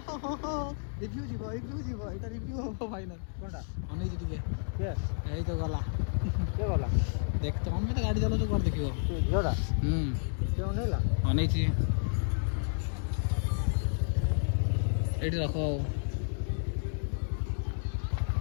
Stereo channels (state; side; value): silent; right; digital silence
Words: ରିଭ୍ୟୁ ଯିବ ଏଇଟା ରିଭ୍ୟୁ ହବ ଫାଇନାଲ কোনটা ଅନେଇଛି ଟିକେ কে ଏଇ ତ ଗଲା কে গলা ଦେଖ ତମେ ତ ଗାଡ଼ି ଚଲାଉଛ କୁଆଡ଼େ ଦେଖିବ তুই ঝিওটা কে অনেইলা ଅନେଇଛି ଏଇଠି ରଖ ଆଉ